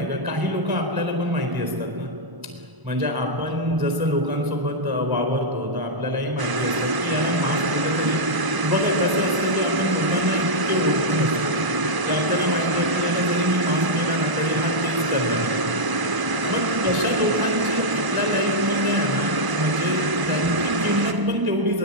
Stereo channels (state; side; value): late; left; 1.0 ms